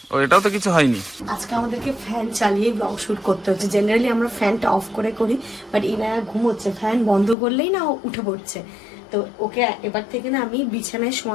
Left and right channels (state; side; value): drops out; right; at 7.4 s